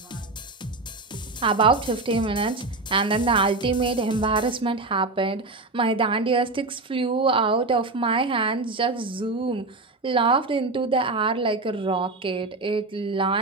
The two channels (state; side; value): quieter; left; 3.3 dB